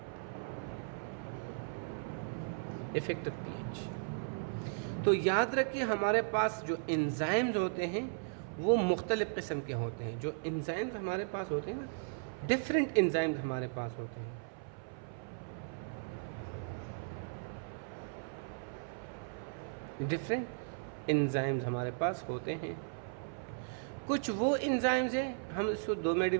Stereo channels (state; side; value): silent; left; 53 dB below the other